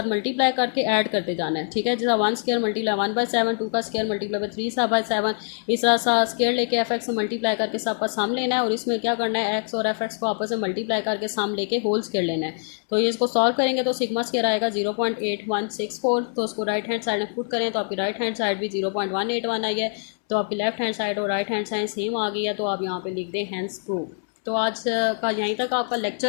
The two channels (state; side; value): silent; right; 62 dB below the other